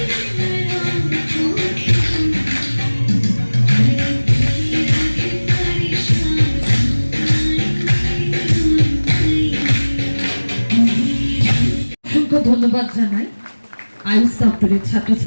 অসংখ্য ধন্যবাদ জানাই আয়ুষ দপ্তরের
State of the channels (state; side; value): inverted; both; correlation -1.00